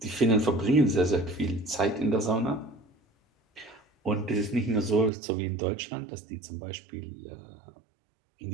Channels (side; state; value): left; drops out; at 5.1 s